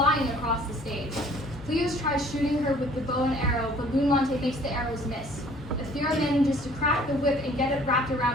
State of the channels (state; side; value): normal; both; correlation 0.54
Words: across the stage. Pleos tries shooting her with the bow and arrow, but Lun Mante makes the arrows miss. Ethera manages to crack the whip and get it wrapped